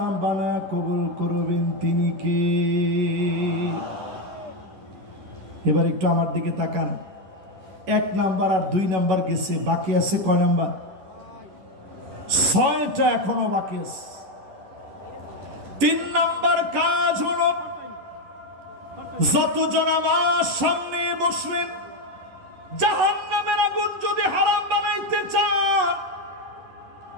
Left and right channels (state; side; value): late; left; 11 ms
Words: বানায় কবুল করবেন তিনি কে? এবার একটু আমার দিকে তাকান। 1 নাম্বার আর 2 নাম্বার গেছে, বাকি আছে কয় নাম্বার? 6টা এখনো বাকি আছে। 3 নাম্বার কাজ হলো, যতজন আমার সামনে বসলেন, জাহান্নামের আগুন যদি হারাম বানাইতে চান,